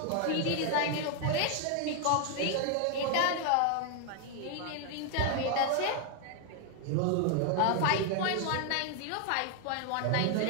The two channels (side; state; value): both; different; correlation 0.00